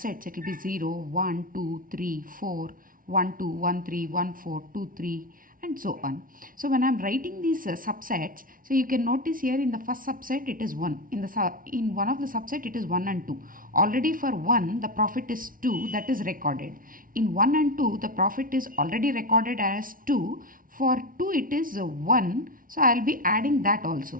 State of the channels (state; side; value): late; left; 0.40 ms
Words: it will be 0, 1, 2, 3, 4, 1, 2, 1, 3, 1, 4, 2, 3 and so on. So when I am writing these subsets, so you can notice here in the first subset it is 1. In one of the subset it is 1 and 2. Already for 1 the profit is 2, that is recorded. In 1 and 2 the profit is already recorded as 2. For 2 it is 1. So I will be adding that